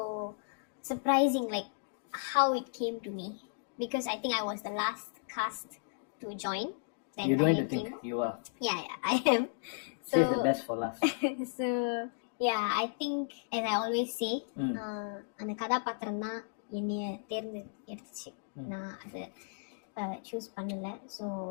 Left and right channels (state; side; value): silent; right; digital silence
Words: surprising, like how it came to me, because I think I was the last cast to join. You don't need to think, you are. Yeah, I am. So save the best for last. So yeah, I think, as I always say, அந்த கதாபாத்திரம் தான் என்னைய தேர்ந்தெடுத்துச்சு. நான் அதை சூஸ் பண்ணல. So